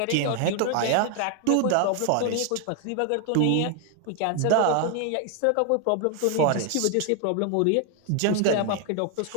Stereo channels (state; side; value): different; both; correlation 0.00